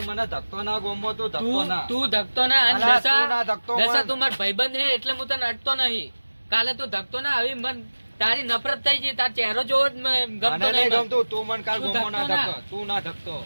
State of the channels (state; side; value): inverted; both; correlation -1.00